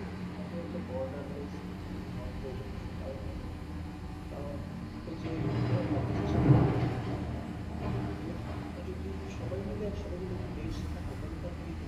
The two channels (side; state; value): both; identical; correlation 1.00